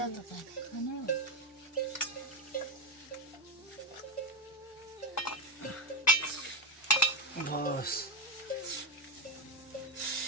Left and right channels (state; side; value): normal; both; correlation 0.06